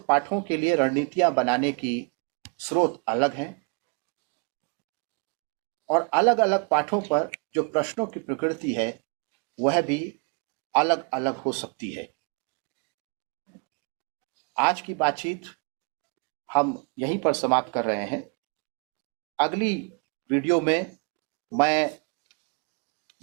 पाठों के लिए रणनीतियां बनाने की स्रोत अलग हैं, और अलग अलग पाठों पर जो प्रश्नों की प्रकृति है वह भी अलग अलग हो सकती है। आज की बातचीत हम यहीं पर समाप्त कर रहे हैं। अगली वीडियो में मैं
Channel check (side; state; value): left; quieter; 33.4 dB